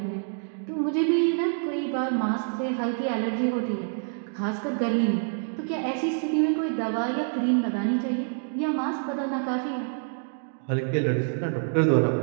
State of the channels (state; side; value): silent; left; digital silence